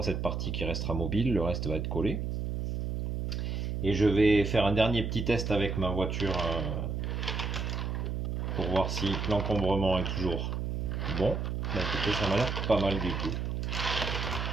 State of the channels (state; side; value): noise; right; hum, 2 dB below the sound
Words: cette partie qui restera mobile, le reste va être collé. Et je vais faire un dernier petit test avec ma voiture pour voir si l'encombrement est toujours bon. Bah écoutez, ça m'a l'air pas mal du tout.